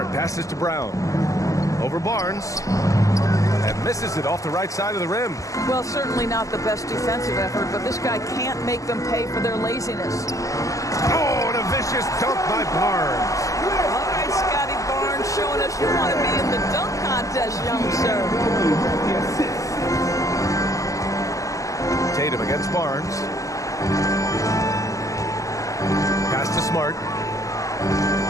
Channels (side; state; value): right; late; 0.16 ms